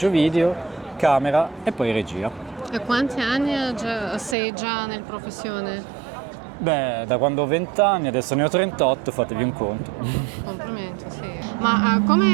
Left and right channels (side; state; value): left; drops out; at 4.4 s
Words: video, camera e poi regia. E quanti anni sei già nella professione? Beh, da quando ho 20 anni, adesso ne ho 38, fatevi un conto. Complimenti, sì. Ma